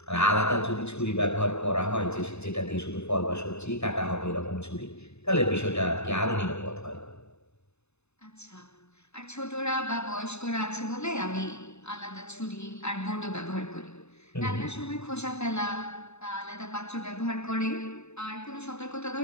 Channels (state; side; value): late; right; 0.81 ms